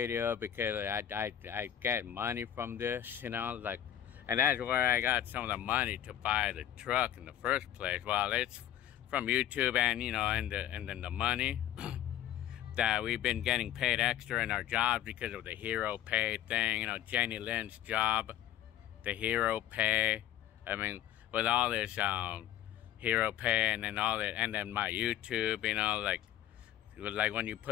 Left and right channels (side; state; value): right; quieter; 11.6 dB